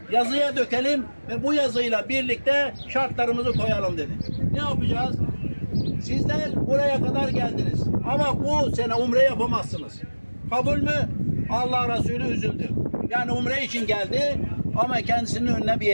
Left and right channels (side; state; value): both; inverted; correlation -1.00